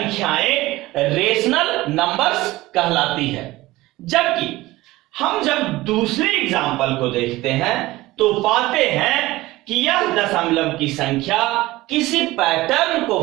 रेशनल नंबर्स कहलाती है। जबकि हम जब दूसरे एग्जाम्पल को देखते हैं तो पाते हैं कि यह दशमलव की संख्या किसी पैटर्न को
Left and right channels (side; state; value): left; quieter; 18.5 dB